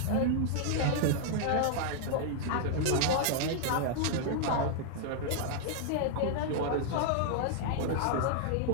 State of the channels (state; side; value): different; both; correlation -0.01